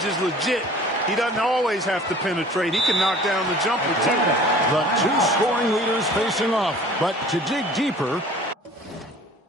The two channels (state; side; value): normal; both; correlation 0.47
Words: is legit. He doesn't always have to penetrate. He can knock down the jumper, too. The two scoring leaders facing off. But to dig deeper,